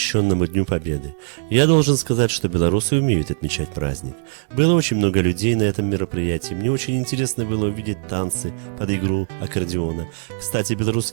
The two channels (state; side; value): silent; left; digital silence